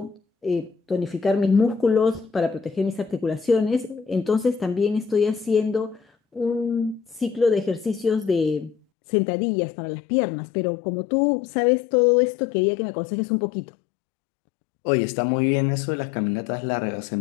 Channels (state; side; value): drops out; right; at 8.8 s